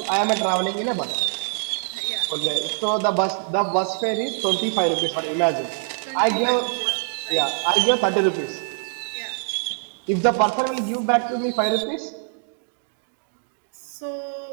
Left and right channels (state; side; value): silent; left; digital silence